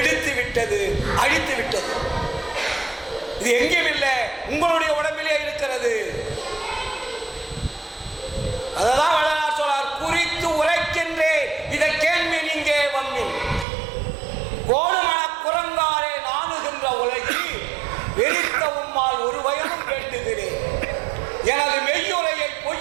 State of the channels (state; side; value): drops out; left; at 13.7 s